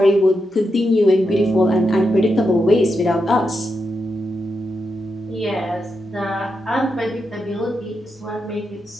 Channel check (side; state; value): both; normal; correlation 0.85